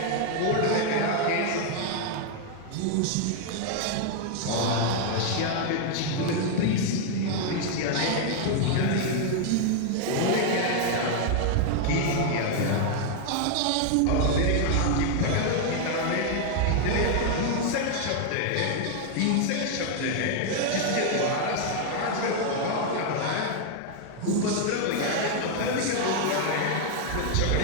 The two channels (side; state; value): both; different; correlation 0.00